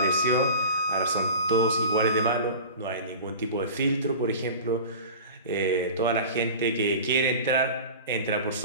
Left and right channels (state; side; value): inverted; both; correlation -0.36